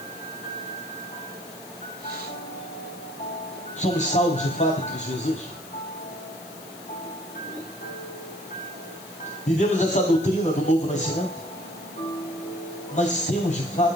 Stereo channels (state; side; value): noise; left; hiss, 17 dB below the sound